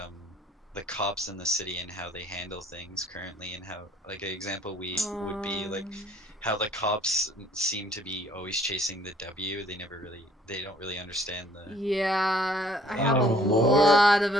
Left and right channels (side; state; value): both; normal; correlation 0.59